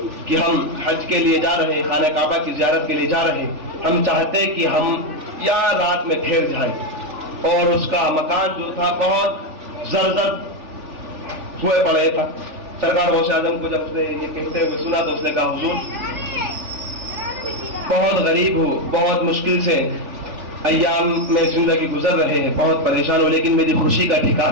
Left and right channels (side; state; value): left; late; 3.4 ms